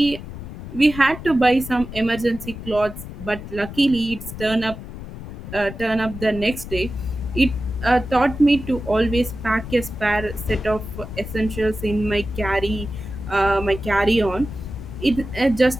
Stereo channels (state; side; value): noise; left; rumble, 11 dB below the sound